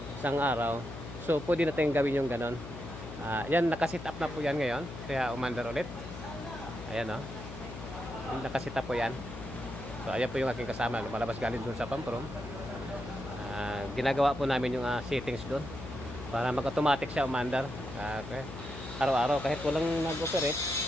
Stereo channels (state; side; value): noise; left; hum, 10 dB below the sound